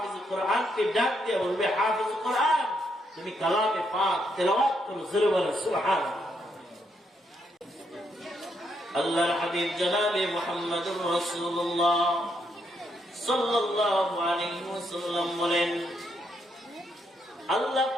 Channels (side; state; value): both; normal; correlation 0.77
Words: কোরআনকে ডাক দিয়ে বলবে, হাফেজ কোরআন তুমি কালামে পাক তেলাওয়াত করো, জোরে বলো সুবহানাল্লাহ। আল্লাহর হাবিব জনাবে মুহাম্মদুর রাসূলুল্লাহ সাল্লাল্লাহু আলাইহি ওয়াসাল্লাম বলেন, আল্লাহ